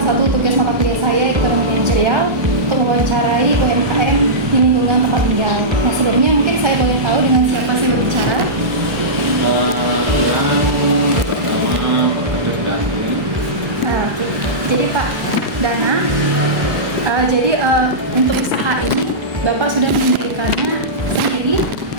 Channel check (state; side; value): late; left; 1.3 ms